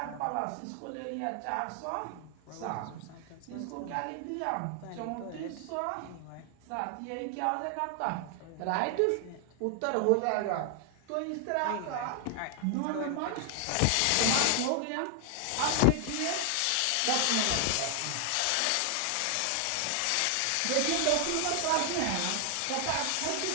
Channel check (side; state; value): both; different; correlation 0.00